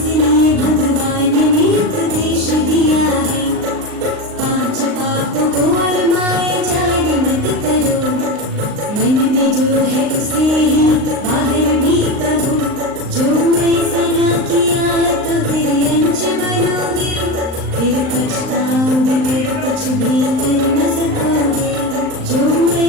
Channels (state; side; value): late; left; 39 ms